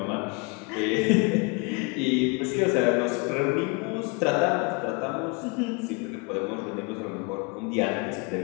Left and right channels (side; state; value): right; quieter; 29.9 dB